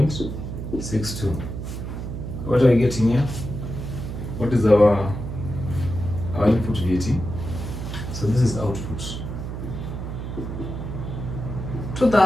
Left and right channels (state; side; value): noise; right; hum, 6 dB below the sound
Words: What are we getting here? What is our input VAT? So this is output.